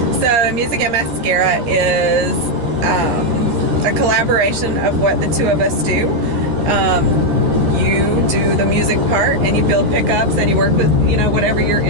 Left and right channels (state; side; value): late; left; 13 ms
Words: So Music and Mascara is a collaboration of what the two of us do. You do the music part, and you build pickups, and you work with, whatever your